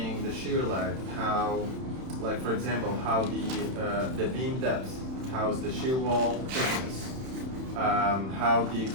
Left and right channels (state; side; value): late; left; 31 ms